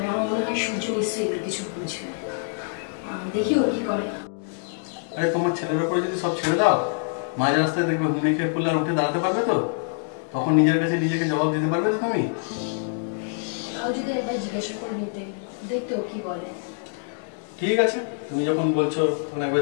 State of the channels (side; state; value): right; silent; 62 dB below the other